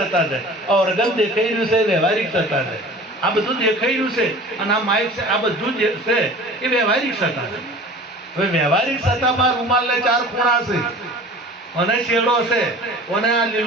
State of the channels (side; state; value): both; normal; correlation 0.42